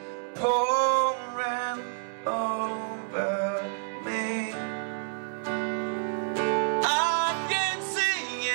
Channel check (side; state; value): left; silent; 59 dB below the other